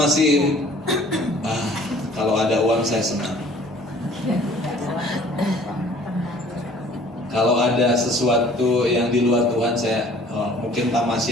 kalau ada uang saya senang. Kalau ada sesuatu yang di luar Tuhan, saya mungkin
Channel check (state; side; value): normal; both; correlation 0.53